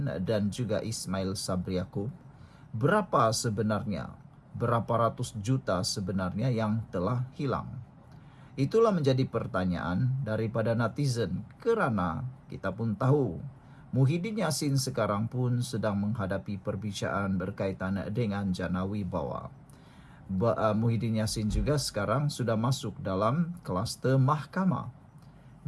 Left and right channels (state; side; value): identical; both; correlation 1.00